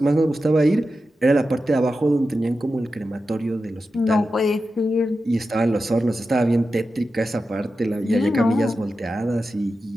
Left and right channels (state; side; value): normal; both; correlation 0.91